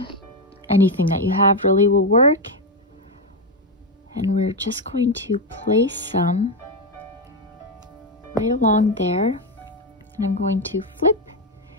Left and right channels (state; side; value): normal; both; correlation 0.07